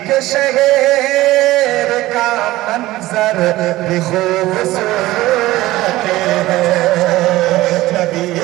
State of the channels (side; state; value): left; quieter; 17.2 dB